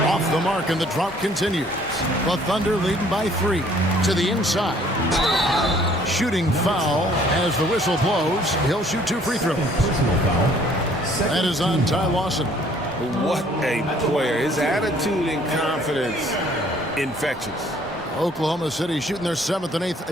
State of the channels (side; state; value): both; normal; correlation 0.59